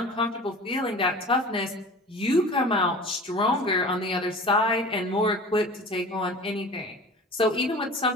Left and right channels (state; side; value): normal; both; correlation 0.39